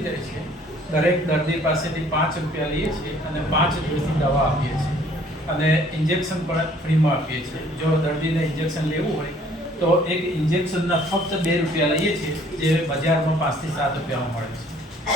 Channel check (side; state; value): both; normal; correlation 0.58